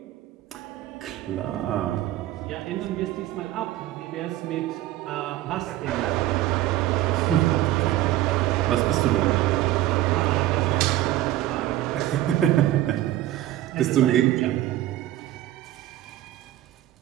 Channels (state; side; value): quieter; left; 14.3 dB